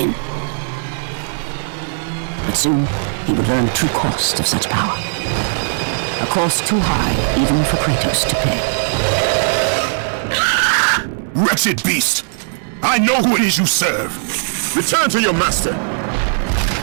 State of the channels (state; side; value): silent; left; digital silence